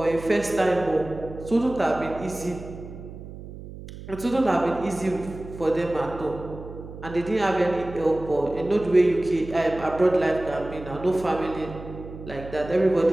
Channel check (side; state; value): right; noise; hum, 13 dB below the sound